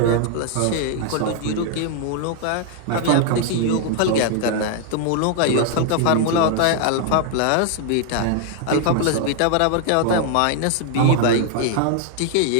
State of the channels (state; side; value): different; both; correlation 0.00